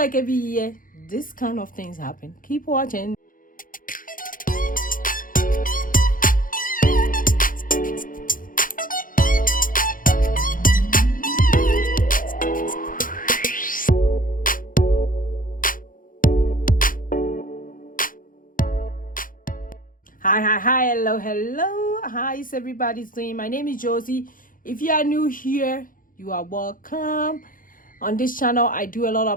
every year this kind of things happen. Keep watching. Hi, hello. How is everybody doing? My name is Josie. If you are new here, you are welcome. On this channel, I do a lot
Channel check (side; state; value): right; late; 0.40 ms